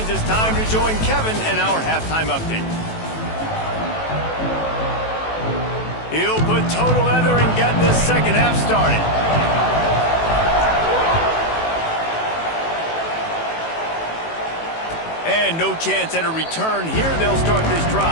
it's time to join Kevin in our halftime update. He'll put total leather and get this second half started. And no chance at a return here. They'll start this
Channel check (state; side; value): late; right; 18 ms